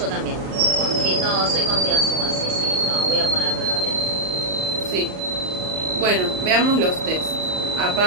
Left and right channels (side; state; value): left; late; 38 ms